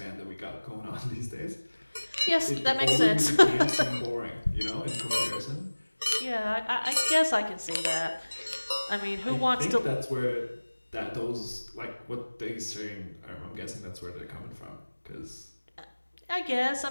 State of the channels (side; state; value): both; inverted; correlation -1.00